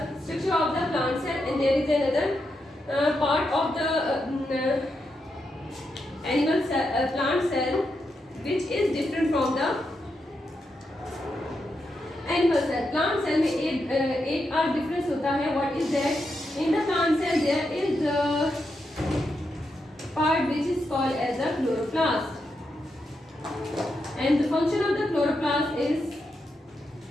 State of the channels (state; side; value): normal; both; correlation 0.84